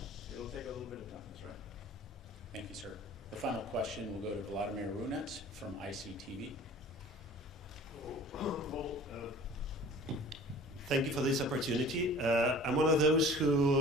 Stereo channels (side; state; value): both; normal; correlation 0.45